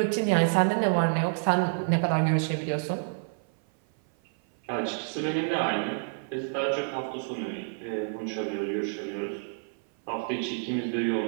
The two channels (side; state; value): left; silent; 56 dB below the other